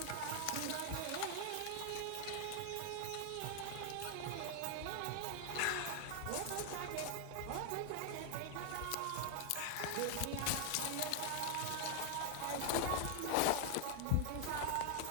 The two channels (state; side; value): different; both; correlation 0.00